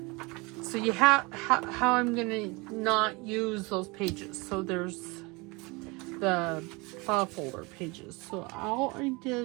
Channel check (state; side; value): quieter; left; 26.3 dB